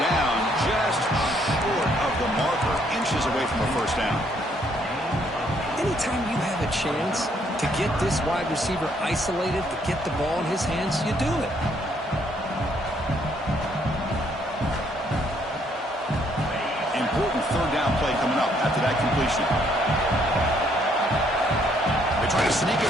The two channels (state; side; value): normal; both; correlation 0.68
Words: just short of the marker, inches away from a first down. Anytime you have a chance to get this wide receiver isolated, to get the ball in his hands, you do it. Important third down play coming up after that completion. They try to sneak